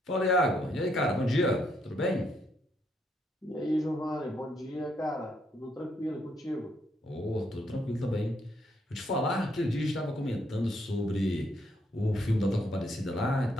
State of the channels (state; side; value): normal; both; correlation 0.73